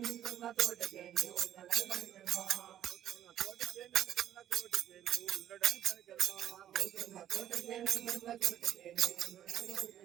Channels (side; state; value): left; quieter; 11.3 dB